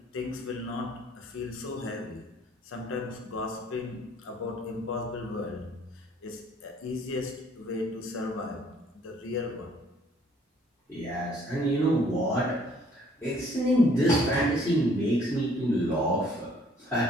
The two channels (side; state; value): both; normal; correlation 0.60